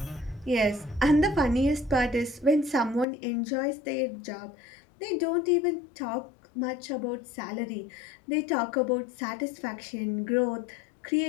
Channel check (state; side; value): drops out; right; at 3.1 s